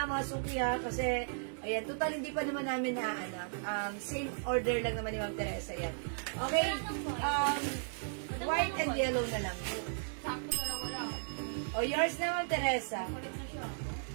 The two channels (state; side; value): silent; left; 54 dB below the other